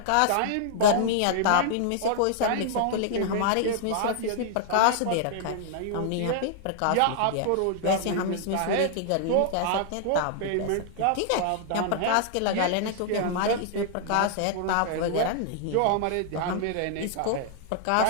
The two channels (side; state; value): both; different; correlation -0.01